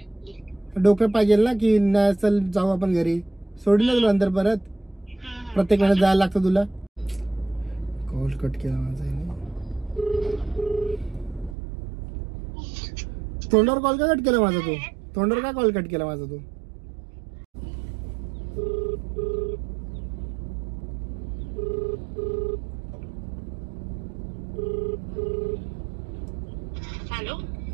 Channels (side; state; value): left; drops out; at 11.6 s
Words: डोकं पाहिजे ना की नाही चल जाऊ आपण घरी. सोडून ना तुला नंतर परत प्रत्येक वेळेस जायला लागतं तुला. कॉल कट केला माझा. तोंडावर कॉल का कट केला माझा तू? तोंडावर का कॉल कट केला माझा तू? Hello